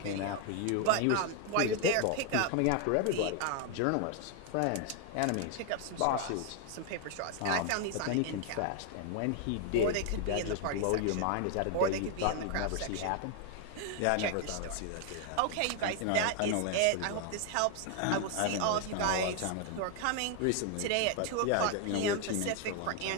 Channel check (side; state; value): both; different; correlation 0.00